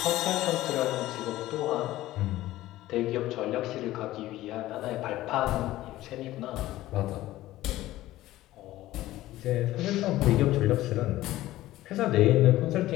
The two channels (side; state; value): right; quieter; 15.8 dB